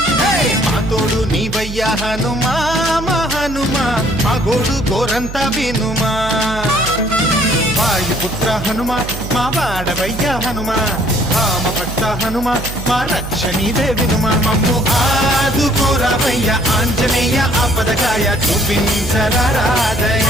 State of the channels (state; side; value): noise; right; hum, 9 dB below the sound